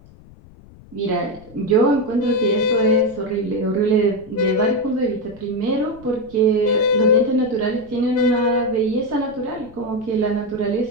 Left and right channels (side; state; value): left; noise; rumble, 23 dB below the sound